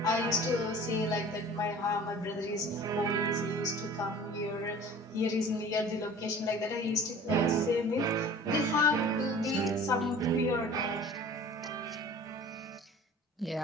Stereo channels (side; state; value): both; normal; correlation 0.44